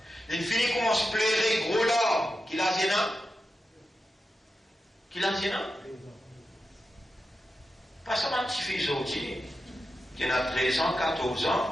Il finit comment se plairait gros l'homme. Qui l'a dit, non? Qui l'a dit, non? Pas seulement un petit fils aujourd'hui, qui a 13 ans, 14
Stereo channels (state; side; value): normal; both; correlation 0.89